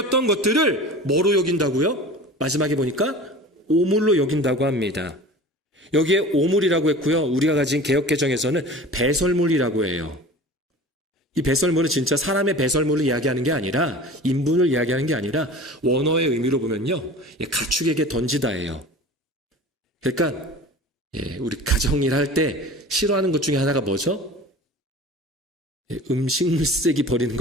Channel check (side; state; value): both; normal; correlation 0.38